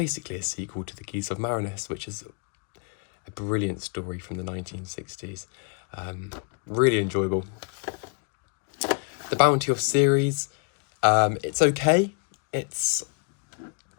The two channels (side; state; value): right; quieter; 37.4 dB